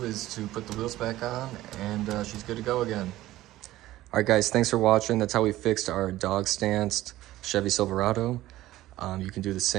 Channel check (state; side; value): quieter; left; 15.7 dB